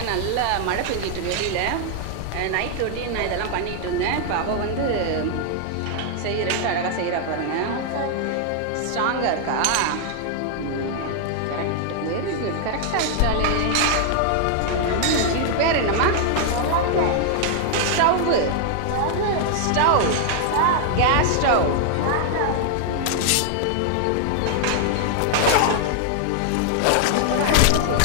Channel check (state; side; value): different; both; correlation 0.00